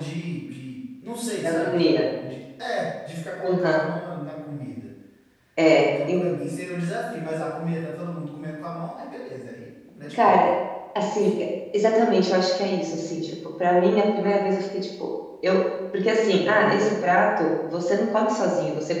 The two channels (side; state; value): both; identical; correlation 1.00